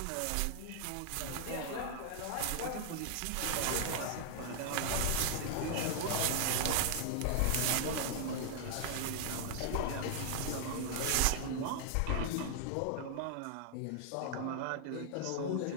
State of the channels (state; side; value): different; both; correlation -0.01